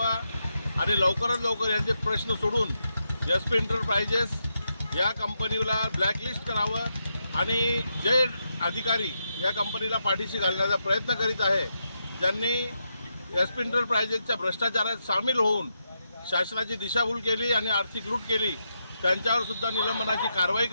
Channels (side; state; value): both; inverted; correlation -0.84